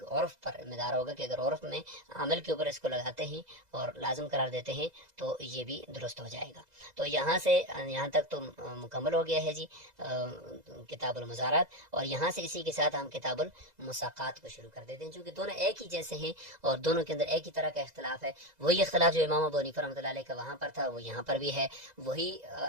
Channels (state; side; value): late; left; 2.0 ms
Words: عرف پر مدار ہوگا کہ اگر عرف میں عامل کے اوپر اس کو لگاتے ہیں اور لازم قرار دیتے ہیں تو یہ بھی درست ہو جائے گا. تو یہاں تک تو مکمل ہو گیا ہے جی کتاب المزارعات. اور یہاں سے اسی کے ساتھ ہم کتاب المساقات کو شروع کر دیتے ہیں، چونکہ دونوں ایک ہی جیسے ہیں اور دونوں کے اندر ایک ہی طرح کا اختلاف ہے. وہی اختلاف جو امام ابو حنیفہ رحمۃ اللہ علیہ کا وہاں پر تھا وہ یہاں پر بھی ہے. وہی